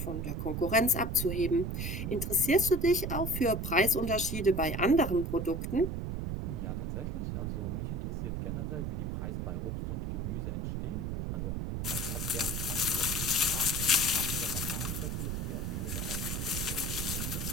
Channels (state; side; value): noise; right; rumble, 2 dB below the sound